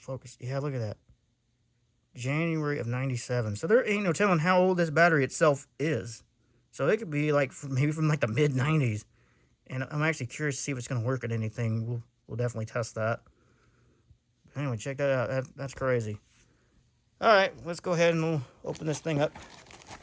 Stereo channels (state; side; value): identical; both; correlation 1.00